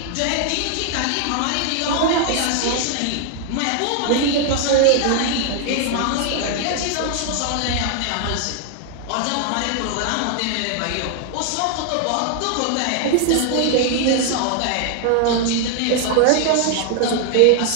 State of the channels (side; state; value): both; different; correlation 0.00